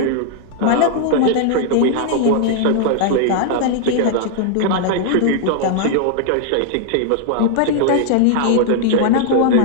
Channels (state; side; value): different; both; correlation 0.00